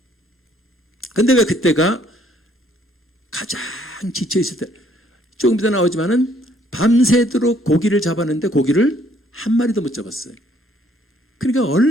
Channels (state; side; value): normal; both; correlation 0.64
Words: 근데 왜 그때가 가장 지쳐있을 때, 조금 이따 나오지만은 밤새도록 고기를 잡았는데 고기를 한 마리도 못 잡았어요. 그러니까